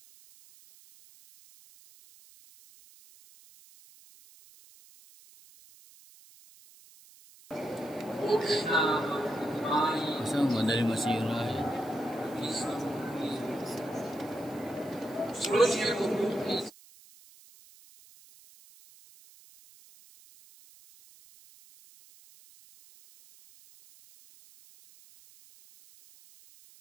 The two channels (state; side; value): noise; right; hiss, 24 dB below the sound